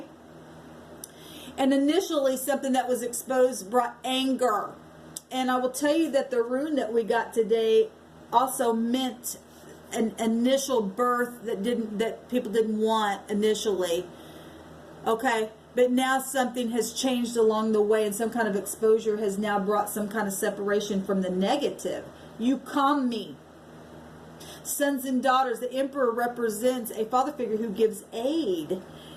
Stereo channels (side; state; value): both; identical; correlation 1.00